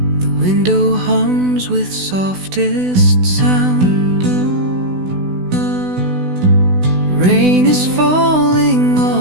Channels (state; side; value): late; left; 16 ms